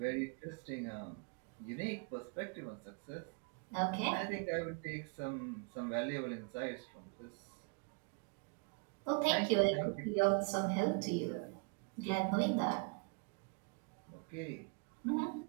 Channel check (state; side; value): quieter; left; 36.2 dB